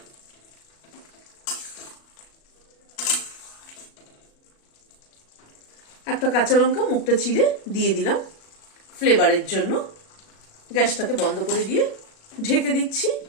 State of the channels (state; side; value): late; right; 37 ms